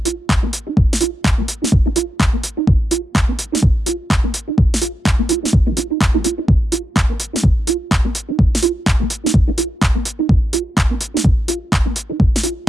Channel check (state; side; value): normal; both; correlation 0.88